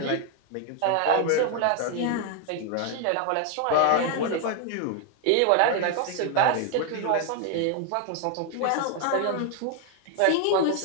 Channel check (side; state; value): both; different; correlation 0.00